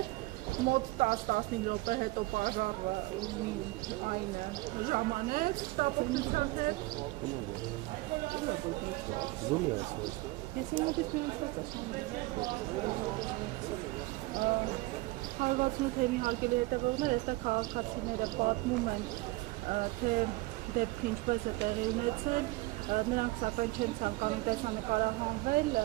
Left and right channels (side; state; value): left; quieter; 21.0 dB